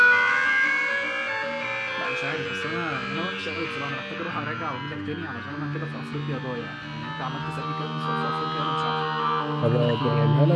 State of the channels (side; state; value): both; identical; correlation 1.00